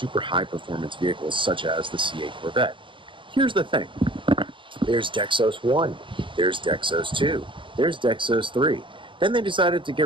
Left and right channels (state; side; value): late; left; 0.24 ms